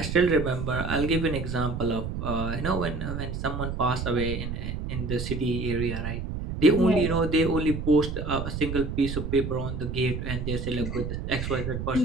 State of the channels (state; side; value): noise; right; rumble, 4 dB below the sound